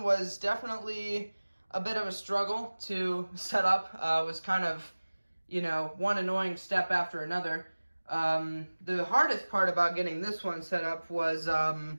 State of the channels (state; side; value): inverted; both; correlation -1.00